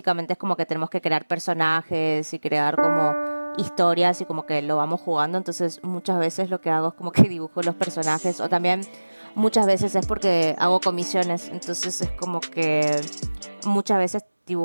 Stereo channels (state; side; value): inverted; both; correlation -1.00